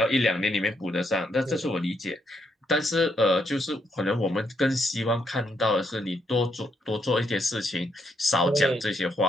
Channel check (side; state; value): both; normal; correlation 0.76